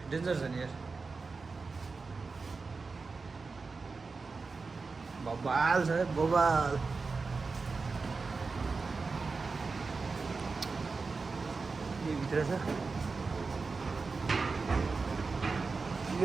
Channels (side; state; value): left; quieter; 4.3 dB